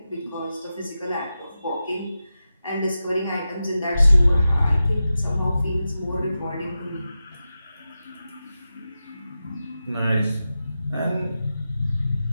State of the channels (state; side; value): inverted; both; correlation -0.91